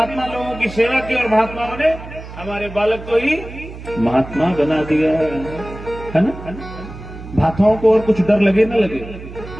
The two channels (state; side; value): noise; right; hum, 13 dB below the sound